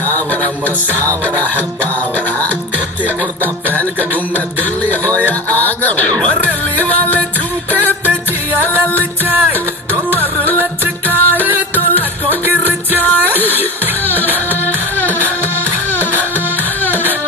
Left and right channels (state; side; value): normal; both; correlation 0.29